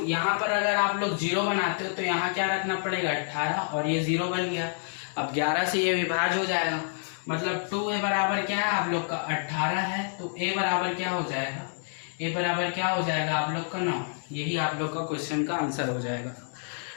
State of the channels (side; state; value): right; silent; digital silence